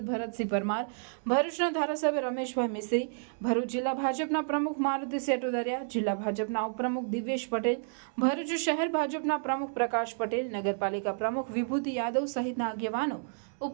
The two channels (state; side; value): silent; left; digital silence